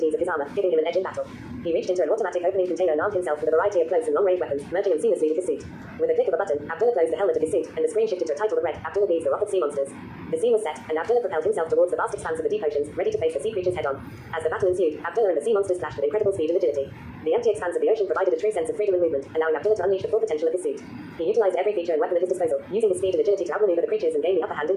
of his armor, giving him an edge in battle. He reached into an automatic opening container and armed himself with a variety of close and long-range weapons, merging them seamlessly with his suit. With a click of a button, Abdullah closed the helmet of his suit, and the screen shifted to a title that read, Abdullah Bees the Wrath of Sea Monsters. The scene was set, and Abdullah propelled himself towards the vast expanse of the deep oceans, ready to face the sea creatures head-on. As the battle ensued, Abdullah and the sea monsters clashed with incredible speed and agility. The empty expanse of the ocean provided a true sense of freedom and movement, allowing Abdullah to unleash the full potential of his suit. He utilized every feature and weapon at his disposal, using his speed and agility to outmaneuver the creatures and gain the upper hand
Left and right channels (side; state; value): both; identical; correlation 1.00